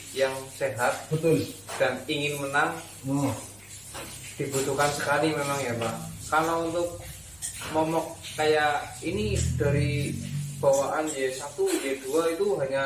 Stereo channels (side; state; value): left; noise; hum, 28 dB below the sound